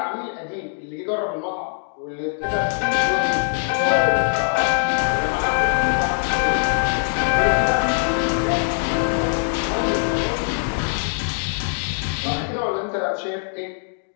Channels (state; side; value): silent; right; digital silence